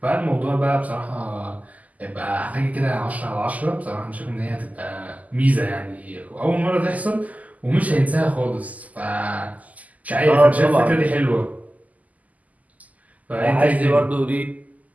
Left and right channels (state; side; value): late; left; 0.076 ms